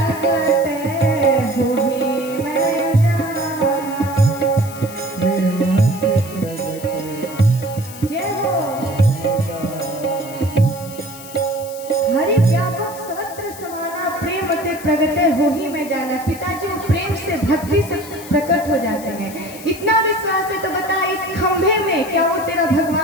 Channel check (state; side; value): noise; left; hiss, 16 dB below the sound